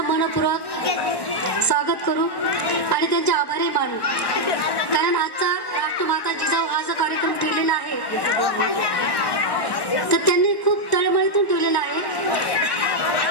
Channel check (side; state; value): right; late; 1.1 ms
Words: मनपूर्वक स्वागत करू आणि त्यांचे आभारी मानू. कारण आजचा राष्ट्रमाता जिजाऊ हा जो कार्यक्रम ठेवलेला आहे तर त्यांनी खूप तळमळीतून ठेवलेला आहे